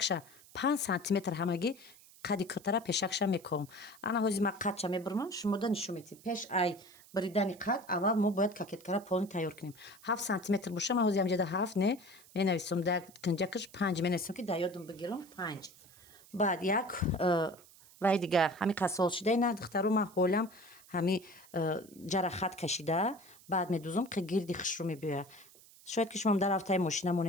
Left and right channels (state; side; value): noise; right; hiss, 24 dB below the sound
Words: 5 сантиметр ҳамагӣ қади кӯтара пешакша мекувам. Ана ҳози ма қадша мебирмам, шумода нишон медиҳем. Пеш ай биридани қад аввал мо бояд кокеткара полни тайёр кунем. 7 сантиметр боша, ма ҳози ҳамҷада 7 не менависам, дар кинҷакаш 5 менависам ки дар ёдам бигирам 5. Баъд як вай дига ҳами қасол шуда ина духтаро ма ҳолам ҳами ҷара хат кашида, баъд медузам ки гирди хушрӯ мебиёяд. Шояд ки шумо дар рафтаи мошина